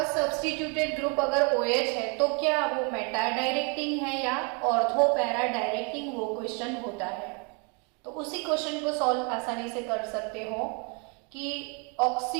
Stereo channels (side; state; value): left; quieter; 34.3 dB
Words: सब्स्टिट्यूटेड ग्रुप अगर OH है तो क्या वो मेटा डायरेक्टिंग है या ऑर्थो पैरा डायरेक्टिंग, वो क्वेश्चन होता है। तो उसी क्वेश्चन को सॉल्व आसानी से कर सकते हो कि